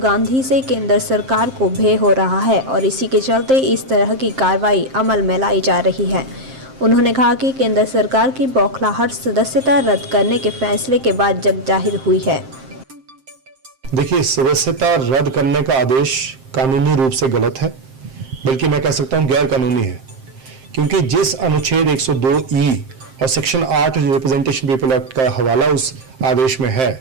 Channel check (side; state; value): left; late; 7.6 ms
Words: से केंद्र सरकार को भय हो रहा है और इसी के चलते इस तरह की कार्रवाई अमल में लाई जा रही है। उन्होंने कहा कि केंद्र सरकार की बौखलाहट सदस्यता रद्द करने के फैसले के बाद जग जाहिर हुई है। देखिए, सदस्यता रद्द करने का आदेश कानूनी रूप से गलत है, बल्कि मैं कह सकता हूं गैर कानूनी है, क्योंकि जिस अनुच्छेद 102E और सेक्शन 8 रिप्रेजेंटेशन पीपल एक्ट का हवाला उस आदेश में है,